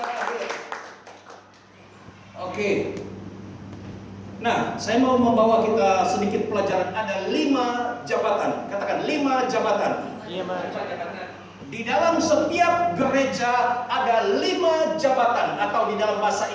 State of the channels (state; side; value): identical; both; correlation 1.00